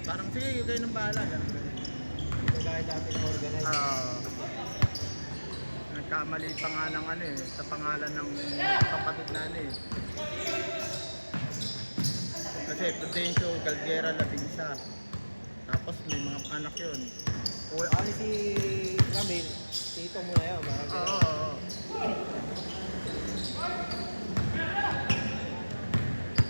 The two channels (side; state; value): both; inverted; correlation -1.00